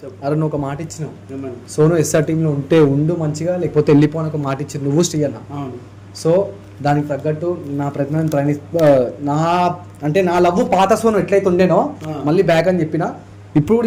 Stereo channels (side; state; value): both; identical; correlation 1.00